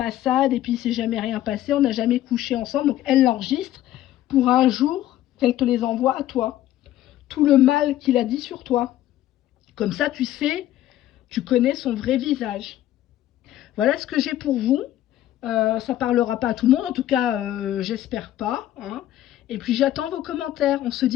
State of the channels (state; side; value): quieter; right; 13.4 dB